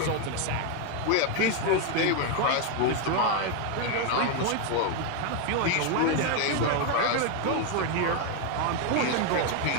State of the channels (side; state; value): both; different; correlation 0.01